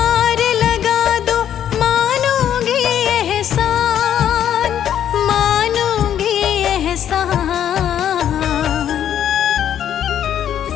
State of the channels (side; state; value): right; quieter; 10.1 dB